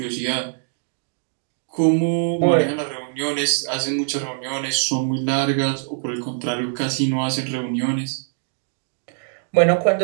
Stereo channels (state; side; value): silent; left; digital silence